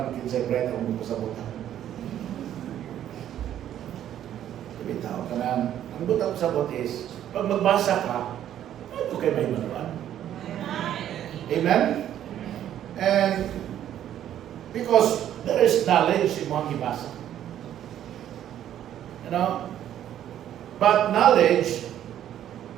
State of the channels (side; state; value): left; quieter; 11.1 dB